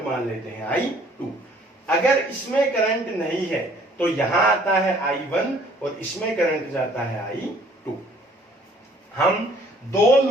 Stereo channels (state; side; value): normal; both; correlation 0.58